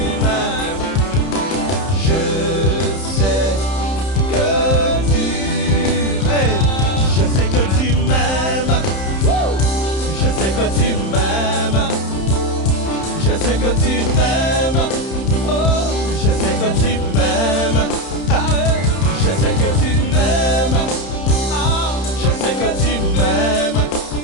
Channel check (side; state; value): right; late; 31 ms